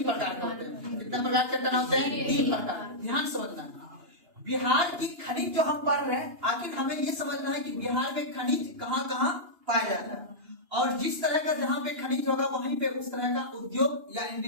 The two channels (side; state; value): left; late; 2.9 ms